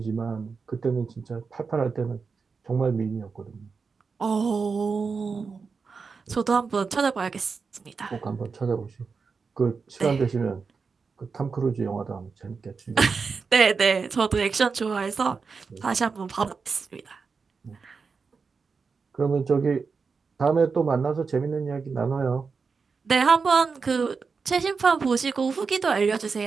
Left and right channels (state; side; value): quieter; left; 5.0 dB